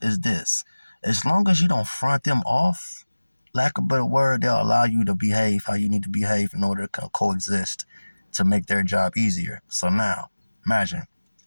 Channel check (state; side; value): inverted; both; correlation -1.00